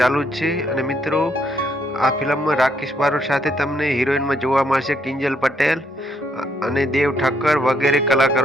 જ છે અને મિત્રો આ ફિલ્મમાં રાકેશ બારોટ સાથે તમને હિરોઈનમાં જોવા મળશે કિંજલ પટેલ અને દેવ ઠક્કર વગેરે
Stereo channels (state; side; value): normal; both; correlation 0.72